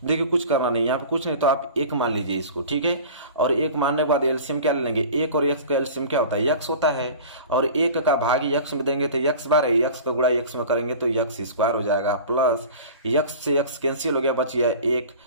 देखिए कुछ करना नहीं, यहाँ पे कुछ नहीं, तो आप 1 मान लीजिए इसको, ठीक है। और 1 मानने के बाद एलसीएम क्या ले लेंगे, 1 और x का एलसीएम क्या होता है x होता है, और 1 का भाग x में देंगे तो x बार है, x का गुणा x में करेंगे तो x स्क्वायर हो जाएगा, प्लस x से x कैंसिल हो गया, बच गया 1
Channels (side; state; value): both; inverted; correlation -0.38